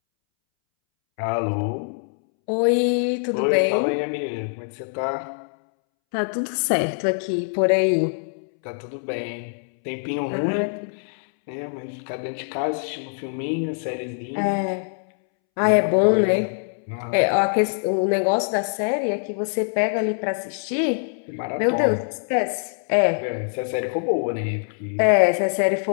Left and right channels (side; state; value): right; silent; 63 dB below the other